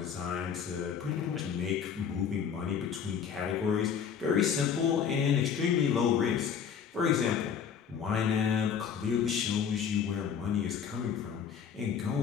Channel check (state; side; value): quieter; right; 7.4 dB